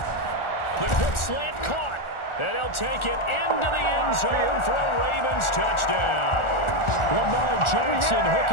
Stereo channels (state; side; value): late; right; 1.4 ms